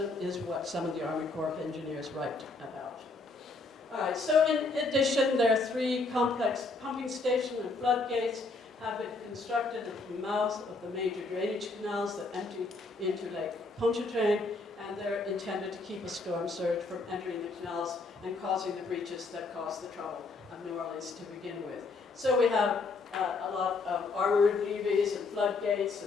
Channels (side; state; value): right; quieter; 3.7 dB